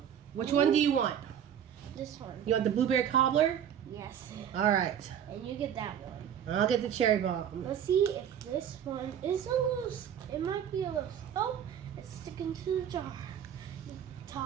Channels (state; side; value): quieter; left; 9.2 dB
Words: Which one do you want? This one. You want the blueberry cobbler? Yes. All right, And you get that one. I'll get the cherry bomb. Let's see if this one is a little. It might be a little. Oh, it's sticking to the jar.